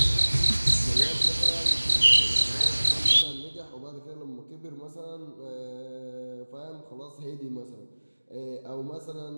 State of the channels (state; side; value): inverted; both; correlation -1.00